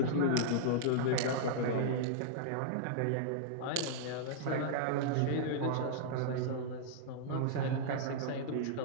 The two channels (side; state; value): both; different; correlation -0.02